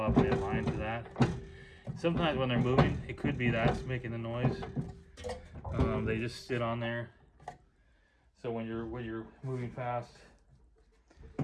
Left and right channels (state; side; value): identical; both; correlation 1.00